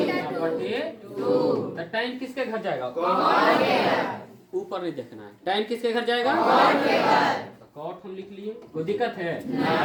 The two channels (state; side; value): identical; both; correlation 1.00